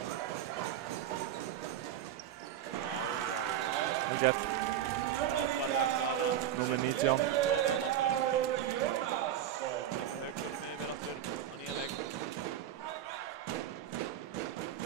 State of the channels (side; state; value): left; quieter; 10.7 dB